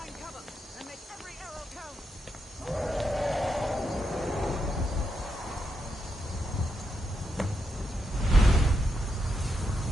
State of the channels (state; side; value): normal; both; correlation 0.83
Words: cover and make every arrow count.